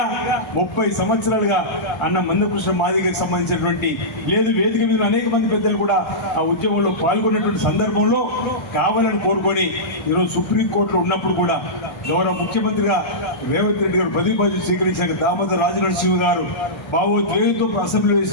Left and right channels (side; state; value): right; late; 1.3 ms